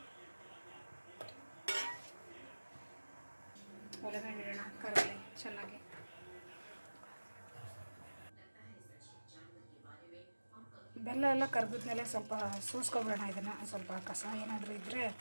ಒಲೆ ಮೇಲೆ ಇಡೋಣ, ಕರಗಲಿ ಚೆನ್ನಾಗಿ. ಬೆಲ್ಲ ಎಲ್ಲ ಕರಗಿದ್ಮೇಲೆ ಸ್ವಲ್ಪ ಸೋಸ್ಕೊಬಿಡೋಣ. ಇದನ್ನು ಸ್ವಲ್ಪ ಕಸ ಏನಾದರೂ ಇದ್ದರೆ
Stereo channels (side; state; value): both; inverted; correlation -1.00